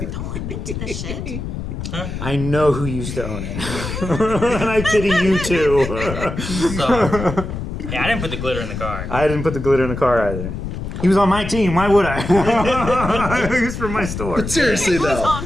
Oh, I'm into this shit. I know who used to own it, and I pity you too. So, yeah, I didn't put the glitter in the car. I didn't put the glitter in the car either. He was on my team. Why would I? He was from my store. But seriously It was though, on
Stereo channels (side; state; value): left; noise; rumble, 6 dB below the sound